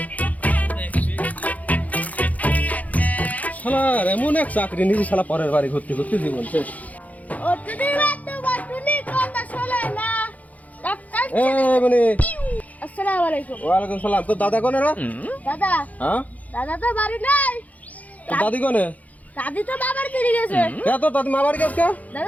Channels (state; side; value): late; right; 0.075 ms